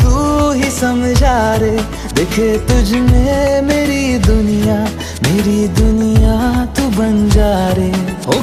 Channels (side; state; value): both; identical; correlation 1.00